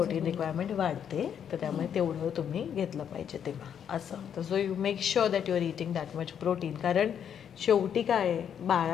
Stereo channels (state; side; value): quieter; right; 8.5 dB